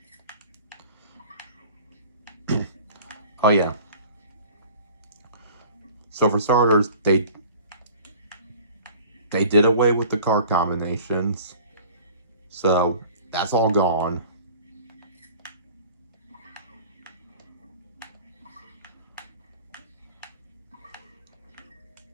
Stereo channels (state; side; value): inverted; both; correlation -0.45